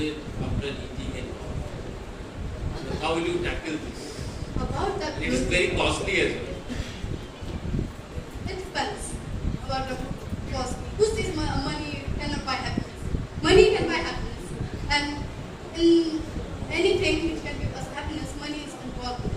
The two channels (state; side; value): identical; both; correlation 1.00